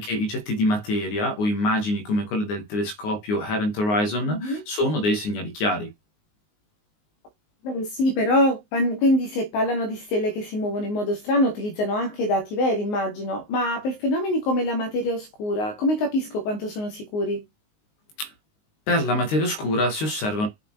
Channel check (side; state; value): right; late; 19 ms